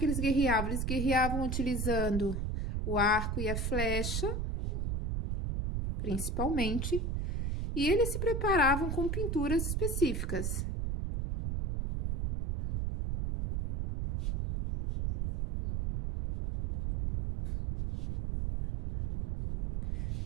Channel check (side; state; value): right; noise; rumble, 1 dB below the sound